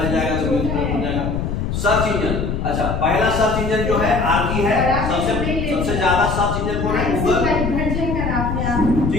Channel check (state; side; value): noise; left; rumble, 2 dB below the sound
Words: जाएगा तो मेन फ्रेम हो जाएगा। सर्च इंजन, अच्छा, पहला सर्च इंजन जो है आर्की है। सबसे ज्यादा सर्च इंजन कौन है? गूगल,